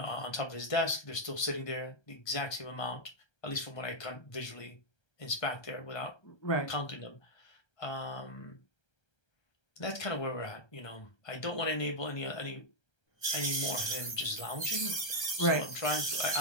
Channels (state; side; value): late; right; 1.3 ms